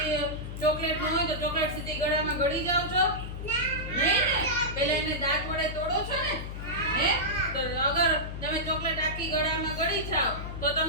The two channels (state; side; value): noise; left; hum, 7 dB below the sound